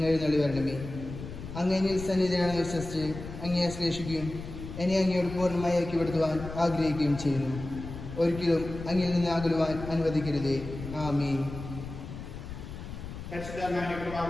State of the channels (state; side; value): noise; left; rumble, 10 dB below the sound